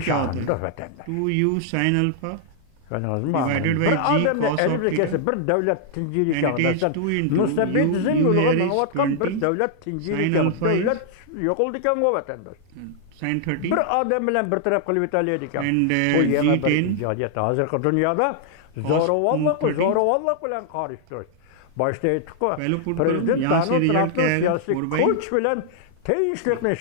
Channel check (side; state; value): both; different; correlation -0.01